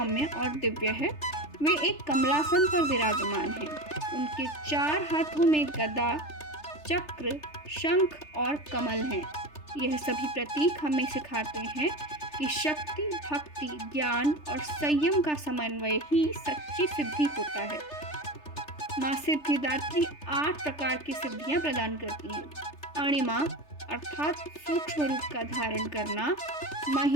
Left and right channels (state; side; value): late; right; 3.3 ms